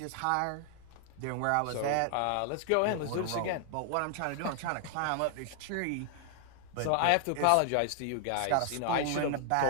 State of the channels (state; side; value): different; both; correlation 0.00